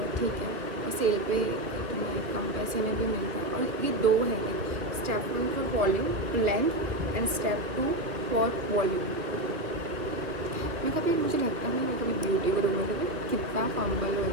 ठीक है। और सेल पे तुम्हें कम पैसे में भी मिलता है। और ये 2 है, step 1 for volume length and step 2 for volume. कभी मुझे लगता नहीं मैं कभी ब्यूटी गुरु में कभी कितना फंबल हो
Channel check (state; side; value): late; left; 2.5 ms